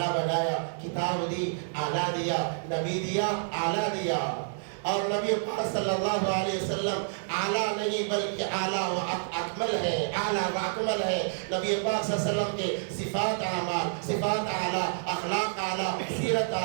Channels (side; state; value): left; silent; digital silence